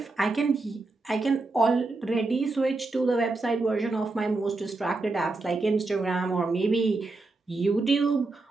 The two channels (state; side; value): quieter; left; 3.4 dB